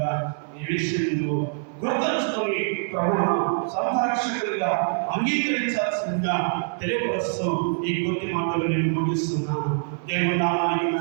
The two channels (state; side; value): silent; left; digital silence